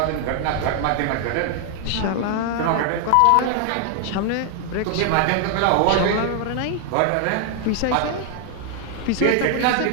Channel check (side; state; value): both; different; correlation 0.00